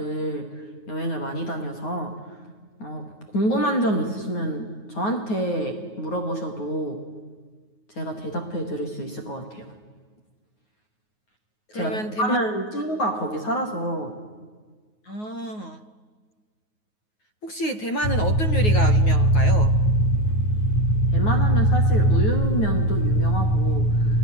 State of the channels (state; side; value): late; right; 9.4 ms